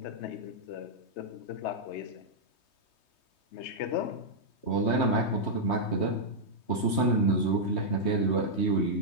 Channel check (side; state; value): right; late; 3.2 ms